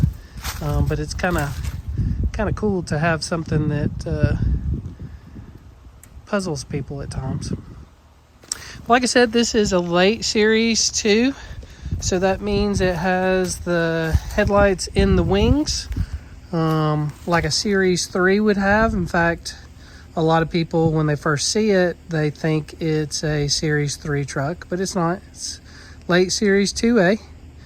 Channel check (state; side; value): identical; both; correlation 1.00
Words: but it's kind of cool to have something that puzzles people at times. Like I said, this is a late Series 2, so that means it has the headlights in the wings, like a Series 3 would have. In fact, a lot of people, when they first see it, they think it's a Series 3 truck, but it's not. It's late Series 2A.